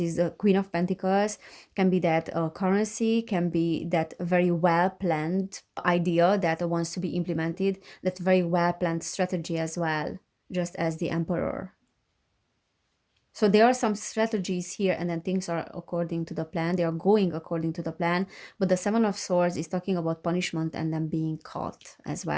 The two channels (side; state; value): both; identical; correlation 1.00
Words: The Queen of Pentacles can be that currency, can be that very well planned idea that wants to be implemented, that very well planned strategy as well, just as the Emperor. So there are some strategies here, and then things are according to the plan. They are going according to the plan. But the Seven of Swords is talking about punishment and then being caught as